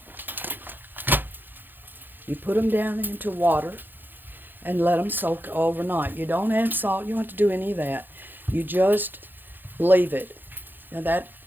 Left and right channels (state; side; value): late; left; 0.092 ms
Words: you put them down into water, and let them soak overnight. You don't add salt. You don't have to do any of that. You just leave it. Now that